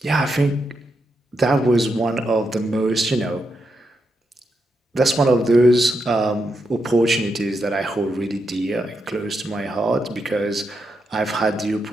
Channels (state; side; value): normal; both; correlation 0.83